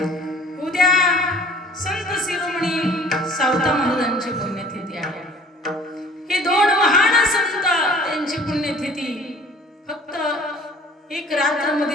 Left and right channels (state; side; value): normal; both; correlation 0.50